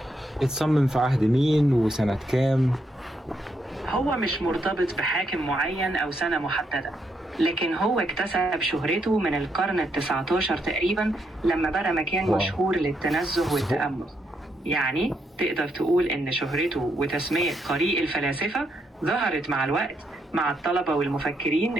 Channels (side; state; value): both; normal; correlation 0.78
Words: اتصمم في عهد مين وسنة كام؟ هو مش مرتبط بحاكم معين أو سنة محددة، لكن هو اكتسب شهرته من القرن ال19 تقريبا لما بقى مكان مشهور للتنزه والتأمل. يعني تقدر تقول إن شهرته وتسمية طريق الفلاسفة ظهرت مع الوقت مع الطلبة والمفكرين